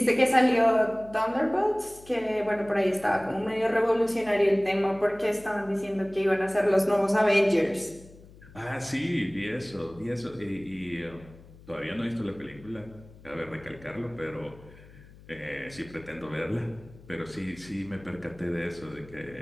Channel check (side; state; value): left; noise; hum, 21 dB below the sound